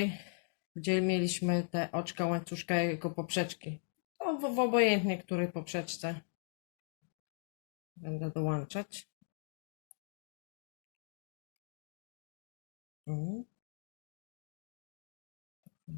gdzie mieliśmy te oczka łańcuszka jako poprzeczki. To w obojętnie której poprzeczce będę dołączać.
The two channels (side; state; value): right; silent; digital silence